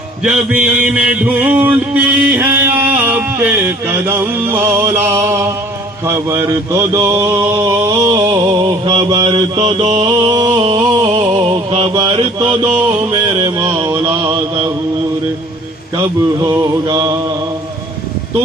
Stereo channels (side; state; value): both; normal; correlation 0.52